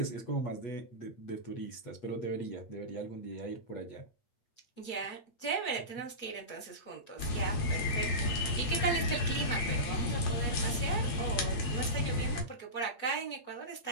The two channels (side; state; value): right; late; 8.9 ms